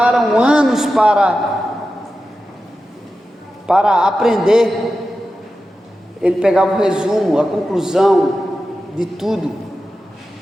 anos para aprender. Ele pegava o resumo, a conclusão de tudo,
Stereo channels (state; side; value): normal; both; correlation 0.92